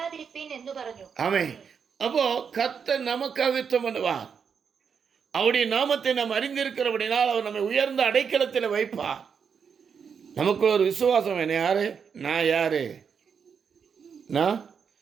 ஆமை. அப்போ கர்த்தர் நமக்காக யுத்தம் பண்ணுவார். அவருடைய நாமத்தை நாம் அறிந்திருக்கிறபடினால் அவர் நம்மை உயர்ந்த அடைக்கலத்தில் வைப்பார். நமக்கு ஒரு விசுவாசம். என்ன யாரு? நான் யாரு?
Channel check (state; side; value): quieter; left; 6.6 dB